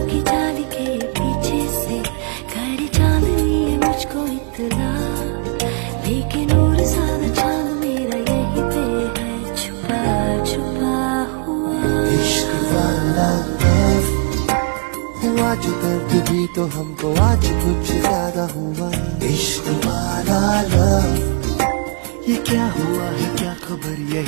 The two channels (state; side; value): quieter; left; 37.3 dB